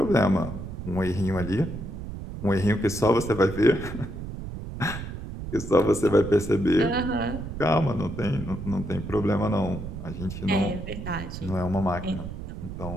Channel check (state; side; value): noise; right; rumble, 8 dB below the sound